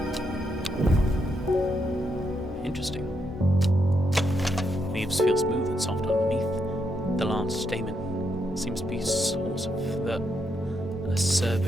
interesting. Leaves feel smooth and soft underneath. The large stamen seems to be a source of the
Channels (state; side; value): normal; both; correlation 0.79